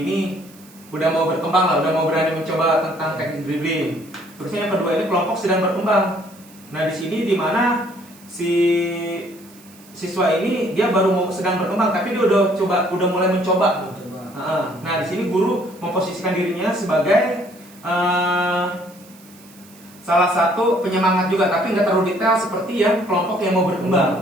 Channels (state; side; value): noise; right; hiss, 24 dB below the sound